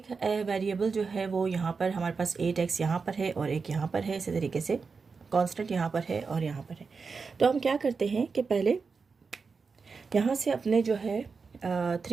वेरिएबल जो है वो यहाँ पर हमारे पास 8x यहाँ पर है और एक यहाँ पर है, इसी तरीके से कांस्टेंट यहाँ पर है और यहाँ पर है। तो हम क्या करते हैं कि पहले यहाँ से अपने जो है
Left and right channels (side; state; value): left; quieter; 4.9 dB